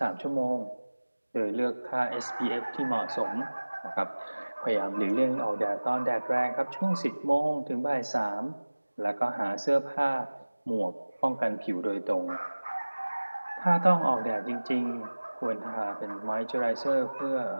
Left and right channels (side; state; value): both; inverted; correlation -1.00